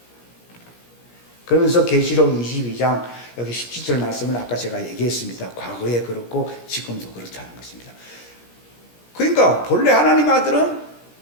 그러면서 계시록 22장 여기 17절 말씀은 아까 제가 얘기했습니다. 과거에 그렇고 지금도 그렇다는 것입니다. 그러니까 본래 하나님 아들은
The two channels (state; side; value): late; right; 17 ms